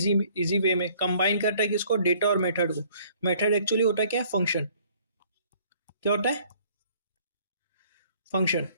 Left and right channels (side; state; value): both; inverted; correlation -0.59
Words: वे में कंबाइन करता है किसको, डेटा और मेथड को। मेथड एक्चुअली होता है क्या, फंक्शन। क्या होता है, फंक्शन।